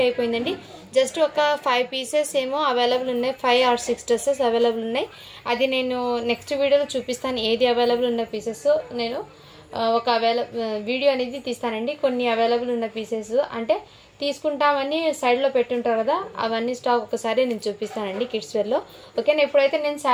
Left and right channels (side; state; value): both; identical; correlation 1.00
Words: అయిపోయిందండి. జస్ట్ ఒక 5 పీసెస్ ఏమో అవైలబుల్ ఉన్నాయి, 5 or 6 డ్రెస్సెస్ అవైలబుల్ ఉన్నాయి. అది నేను నెక్స్ట్ వీడియోలో చూపిస్తాను. ఏది అవైలబుల్ ఉన్న పీసెస్ నేను ఒక వీడియో అనేది తీస్తానండి. కొన్ని అవైలబుల్ ఉన్న పీసెస్ అంటే తీసుకుంటామని సైడ్లో పెట్టుంటారు కదా, అవన్నీ స్టాక్ ఒకసారి నేను చూపిస్తానండి కిడ్స్ వేర్లో. ఓకేనా, ఇప్పుడైతే నేను